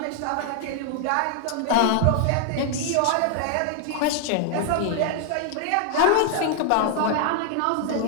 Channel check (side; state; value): both; different; correlation 0.00